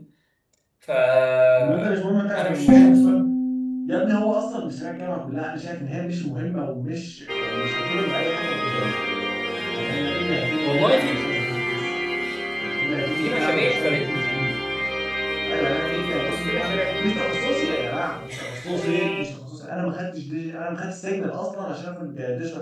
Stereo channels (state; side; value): identical; both; correlation 1.00